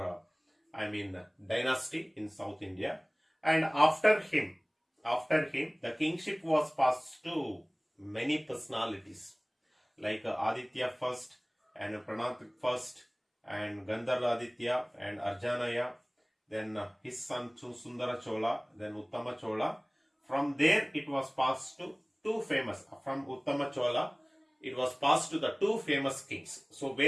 dynasty in South India. And after him, the kingship was passed to many personalities like Aditya first and Pranath first and Gandhara Aditya and Arjanaya, then his son Sundara Chola, then Uttama Chola. From there it was passed to two famous, from Uttama Chola it was passed to the two famous kings. So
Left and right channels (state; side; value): identical; both; correlation 1.00